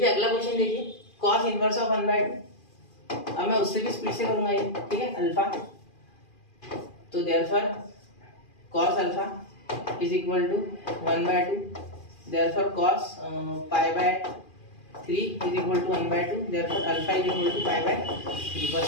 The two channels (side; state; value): right; late; 2.4 ms